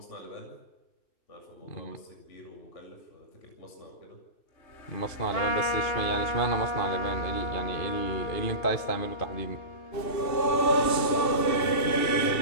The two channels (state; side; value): late; right; 2.7 ms